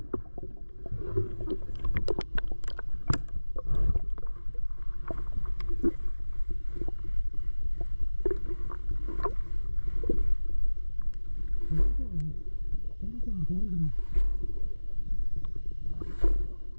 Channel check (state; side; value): inverted; both; correlation -1.00